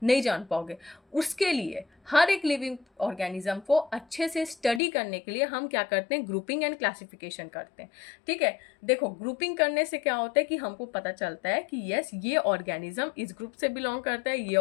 नहीं जान पाओगे। उसके लिए हर एक लिविंग ऑर्गेनिज्म को अच्छे से स्टडी करने के लिए हम क्या करते हैं, ग्रुपिंग एंड क्लासिफिकेशन करते हैं, ठीक है। देखो ग्रुपिंग करने से क्या होता है कि हमको पता चलता है कि यस, ये ऑर्गेनिज्म इस ग्रुप से बिलोंग करता है, ये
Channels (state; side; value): drops out; right; at 4.8 s